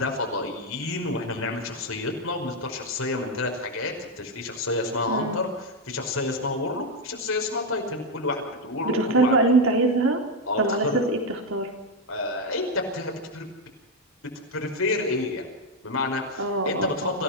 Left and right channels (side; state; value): both; normal; correlation 0.05